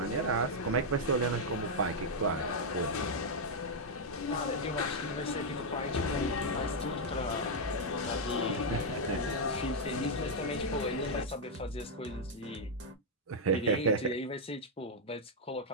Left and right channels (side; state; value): both; normal; correlation -0.03